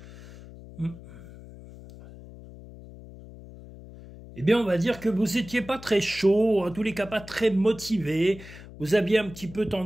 Eh bien, on va dire que vous n'étiez pas très chaud, en tous les cas pas très motivé. Vous aviez un petit peu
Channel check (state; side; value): noise; left; hum, 17 dB below the sound